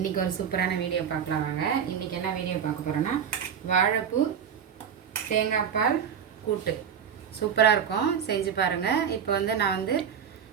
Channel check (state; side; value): quieter; left; 7.9 dB